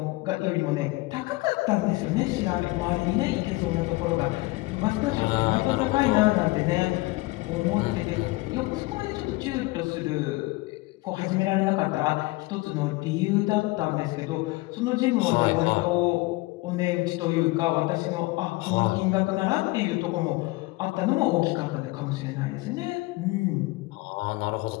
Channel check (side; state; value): right; quieter; 21.9 dB